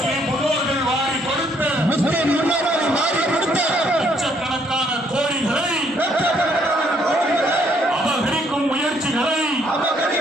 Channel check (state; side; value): normal; both; correlation 0.68